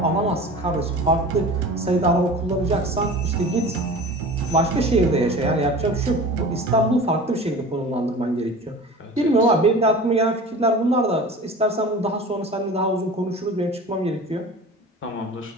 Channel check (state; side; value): normal; both; correlation 0.38